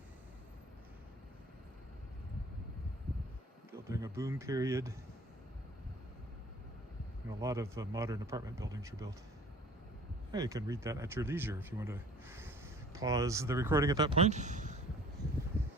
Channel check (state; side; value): normal; both; correlation 0.48